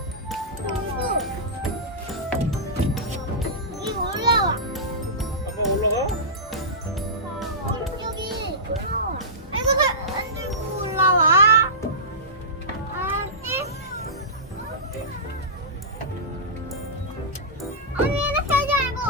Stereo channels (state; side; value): normal; both; correlation -0.17